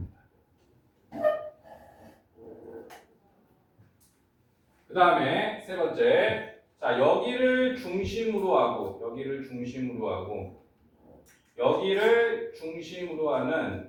그 다음에 세 번째, 자 여기를 중심으로 하고 여기를 중심으로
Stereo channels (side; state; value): both; identical; correlation 1.00